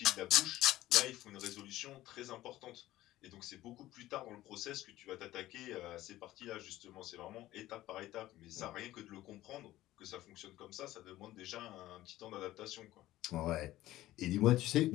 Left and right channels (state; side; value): quieter; right; 15.6 dB